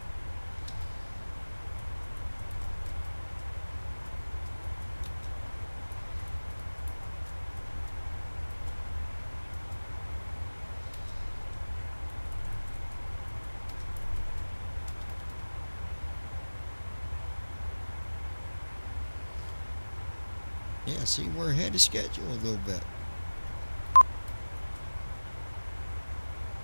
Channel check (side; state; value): both; inverted; correlation -1.00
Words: Yeah, see, we're ahead of schedule a little bit.